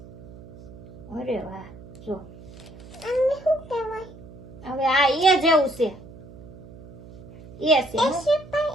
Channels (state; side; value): noise; right; hum, 17 dB below the sound